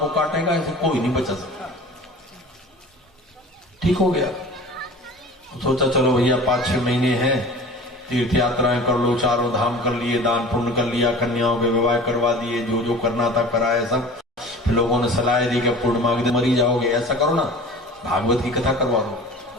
काटेगा, इसे कोई नहीं बचा सकता। ठीक हो गया। सोचा चलो भैया 5-6 महीने हैं, तीर्थ यात्राएं कर लो, चारों धाम कर लिए, दान पुण्य कर लिया, कन्याओं के विवाह करवा दिए, जो जो करना था कराया सब। फिर लोगों ने सलाह दी कि पूर्णिमा के दिन मरी जाओगे, ऐसा करो ना भागवत की कथा करवा दो,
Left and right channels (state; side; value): normal; both; correlation 0.40